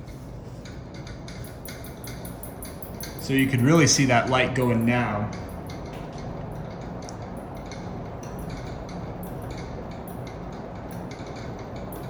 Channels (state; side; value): identical; both; correlation 1.00